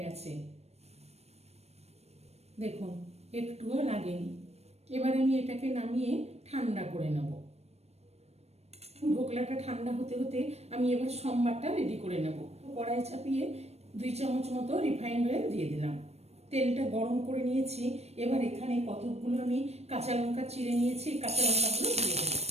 গেছে। দেখুন একটুও লাগেনি। এবার আমি এটাকে নামিয়ে ঠান্ডা করে নেব। ধোকলাটা ঠান্ডা হতে হতে আমি এবার সম্বারটা রেডি করে নেব। কড়াই চাপিয়ে 2 চামচ মতো রিফাইন্ড অয়েল দিয়ে দিলাম। তেলটা গরম করে নিয়েছি। এবার এখানে কতগুলো আমি কাঁচা লঙ্কা চিড়ে নিয়েছি, কাঁচা লঙ্কাগুলো দিয়ে দেবো।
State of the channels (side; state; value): left; late; 0.31 ms